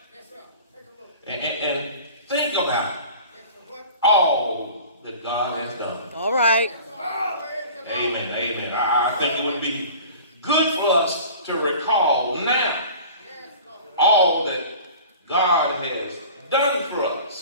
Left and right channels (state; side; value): inverted; both; correlation -0.42